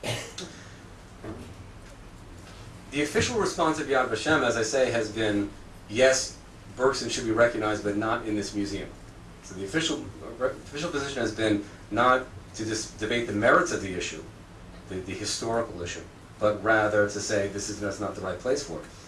The official response of Yad Vashem, as I say, has been, yes, Bergson should be recognized, but not in this museum. So the official position has been not to just debate the merits of the issue, the historical issue, but rather to say that's not the right place for it.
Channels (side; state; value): both; identical; correlation 1.00